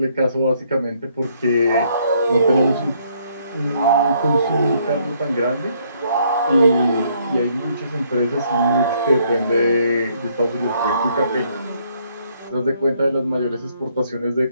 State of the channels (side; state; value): both; inverted; correlation -0.68